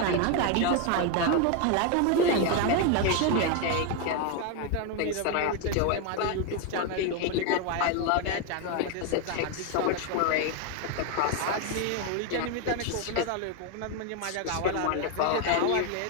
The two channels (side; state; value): both; different; correlation 0.01